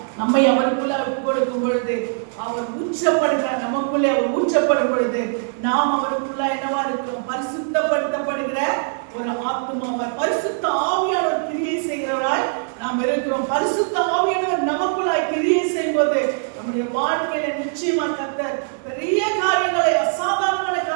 நம்மை அவருக்குள்ள ஒப்பு கொடுக்கும் பொழுது அவர் ஊற்றப்படுகிறார், நமக்குள்ளே அவர் ஊற்றப்படும் பொழுது நாம் அவருக்குள்ள என்னவா இருக்கிறோம்? பரிசுத்தப்படுத்தப்படுகிற ஒரு ஆத்துமாவாய், பரிசுத்த ஆவியானவர் கிரியை செய்கிறவராய் நாம் இருக்கிறோம். பரிசுத்த ஆவியானவர் நமக்குள்ளாய் கிரியை செய்யும் போது நம்முடைய வாழ்க்கையில நிச்சயமா கர்த்தர் பெரிய காரியங்களை, அசாதாரணமான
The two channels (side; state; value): left; silent; 64 dB below the other